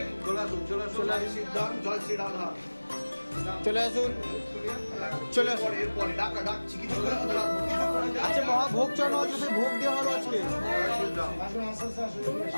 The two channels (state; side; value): inverted; both; correlation -1.00